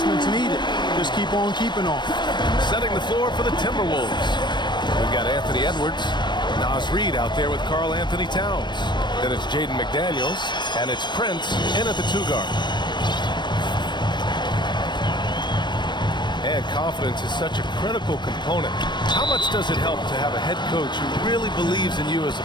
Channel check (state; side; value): late; right; 0.22 ms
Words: needed. Just keep on keeping on. Setting the floor for the Timberwolves. We've got Anthony Edwards. Nas Reed out there with Karl Anthony Towns. Then it's Jaden McDaniels, and it's Prince in at the 2-guard. And confidence is such a critical component. How much does it help to have a head coach who really believes in you as a